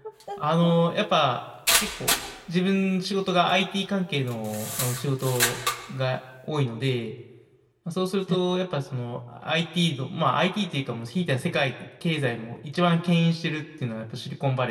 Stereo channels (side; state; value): both; identical; correlation 1.00